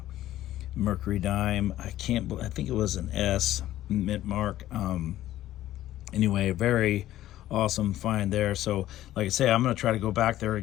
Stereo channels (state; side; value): quieter; right; 13.9 dB